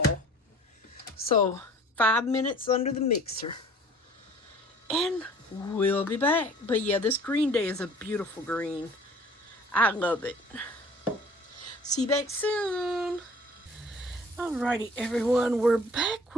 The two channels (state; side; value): normal; both; correlation 0.49